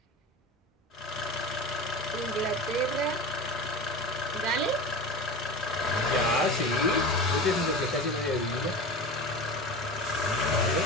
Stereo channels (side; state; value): both; normal; correlation 0.30